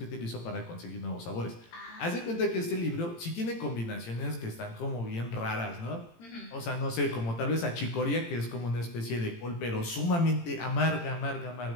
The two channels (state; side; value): late; right; 18 ms